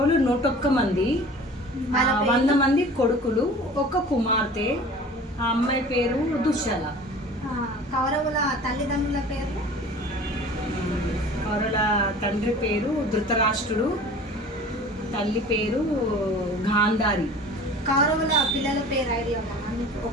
101 మంది, 100 మంది కొడుకులు, ఒక కుమార్తె. ఆ అమ్మాయి పేరు దుశ్శల. కౌరవుల తల్లిదండ్రుల పేర్లు? కౌరవుల తండ్రి పేరు ధృతరాష్ట్రుడు, తల్లి పేరు గాంధారి. కౌరవుల పిల్లల పేరు ఐడియా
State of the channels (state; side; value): normal; both; correlation 0.43